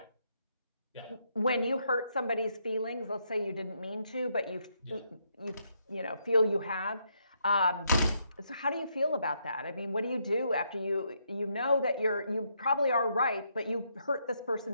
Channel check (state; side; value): inverted; both; correlation -0.76